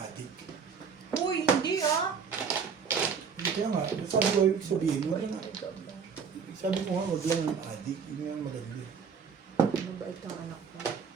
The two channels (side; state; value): left; quieter; 6.2 dB